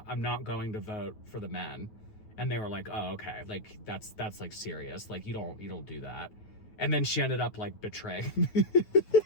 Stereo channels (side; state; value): right; late; 9.4 ms